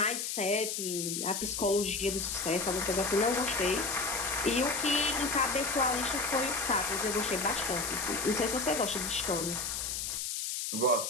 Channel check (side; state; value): left; noise; hiss, 2 dB below the sound